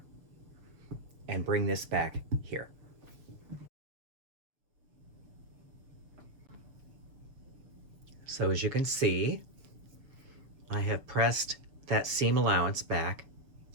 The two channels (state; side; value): late; left; 7.0 ms